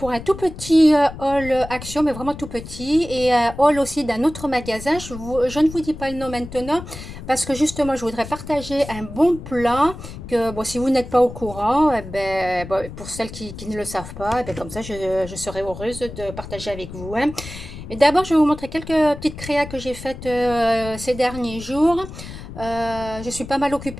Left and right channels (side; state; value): left; noise; rumble, 12 dB below the sound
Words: un tout petit haul action, mais vraiment tout petit, et un haul aussi d'un autre magasin. Je ne vous dis pas le nom maintenant parce que justement je voudrais partager un bon plan que, bon, si vous n'êtes pas au courant, eh ben, bon, pour celles qui ne le savent pas, eh ben, comme ça je serai heureuse de partager avec vous, hein. Et d'abord je vais vous montrer quelques petites créas que j'ai faites ces derniers jours. Je suis pas mal